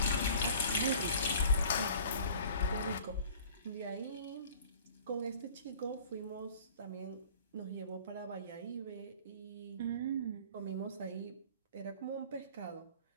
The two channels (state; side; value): inverted; both; correlation -0.48